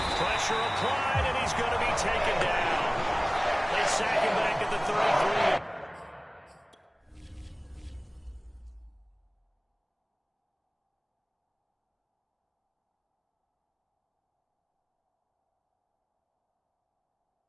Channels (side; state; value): both; identical; correlation 1.00